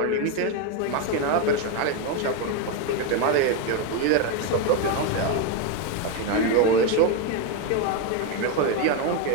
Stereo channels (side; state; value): both; different; correlation 0.02